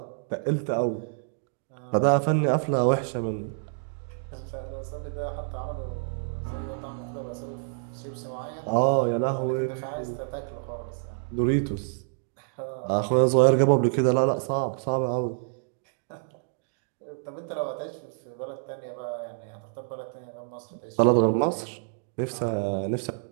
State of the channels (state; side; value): silent; left; digital silence